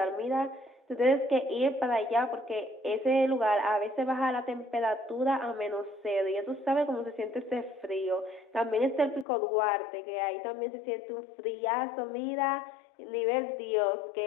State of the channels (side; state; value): right; drops out; at 9.2 s